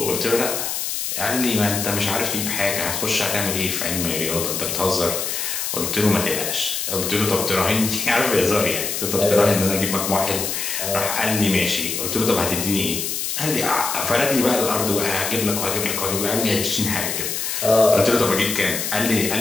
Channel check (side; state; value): left; noise; hiss, 2 dB below the sound